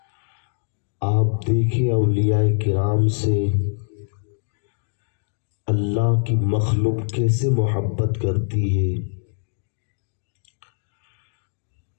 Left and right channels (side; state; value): right; silent; digital silence